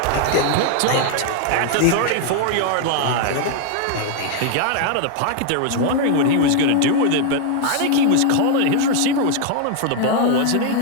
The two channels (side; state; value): both; different; correlation 0.00